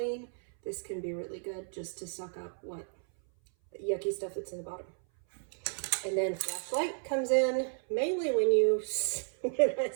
this can be really good just to suck up what yucky stuff that's in the bottom. And then flashlight comes in mainly when I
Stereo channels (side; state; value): left; silent; 56 dB below the other